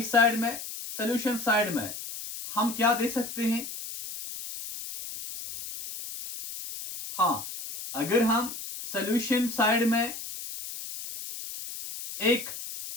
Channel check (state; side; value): noise; left; hiss, 9 dB below the sound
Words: साइड में? सोल्यूशन साइड में हम क्या दे सकते हैं? हाँ, अगर हम सॉल्यूशन साइड में एक